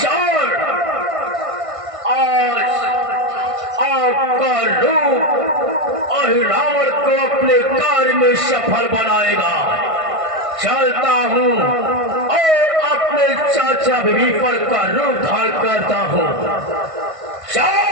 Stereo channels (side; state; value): left; late; 1.5 ms